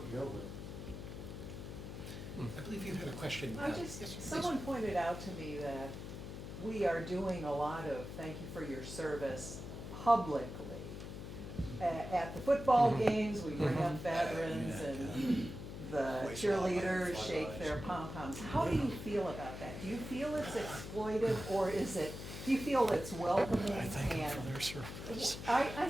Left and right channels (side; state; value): left; noise; hum, 9 dB below the sound